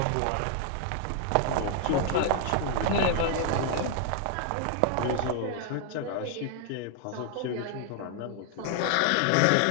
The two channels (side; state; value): both; different; correlation 0.00